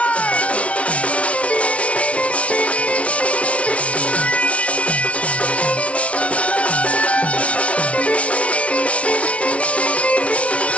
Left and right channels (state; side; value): late; right; 0.063 ms